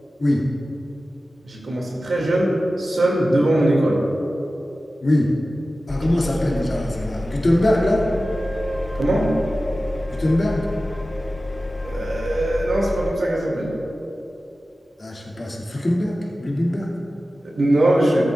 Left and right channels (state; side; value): normal; both; correlation 0.95